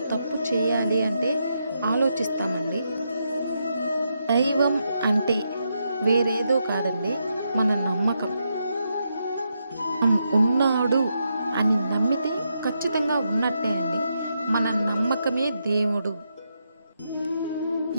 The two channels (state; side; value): inverted; both; correlation -0.82